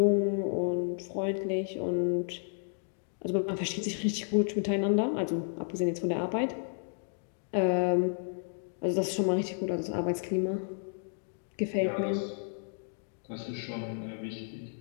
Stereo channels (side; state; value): right; silent; digital silence